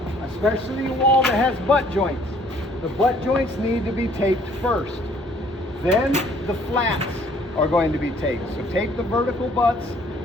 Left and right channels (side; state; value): both; normal; correlation 0.60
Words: especially a wall that has butt joints, the butt joints need to be taped first. Then the flats are going to be taped. So tape the vertical butts,